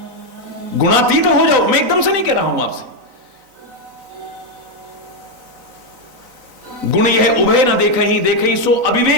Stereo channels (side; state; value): left; late; 3.9 ms